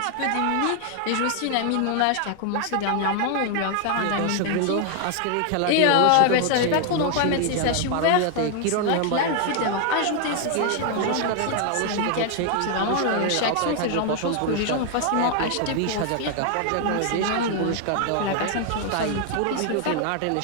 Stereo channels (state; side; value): different; both; correlation 0.00